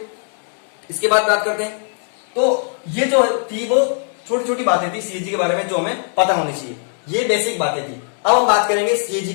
इसके बाद बात करते हैं, तो ये जो थी वो छोटी छोटी बातें थी सीएजी के बारे में जो हमें पता होनी चाहिए, ये बेसिक बातें थी। अब हम बात करेंगे सीएजी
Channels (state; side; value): silent; right; 60 dB below the other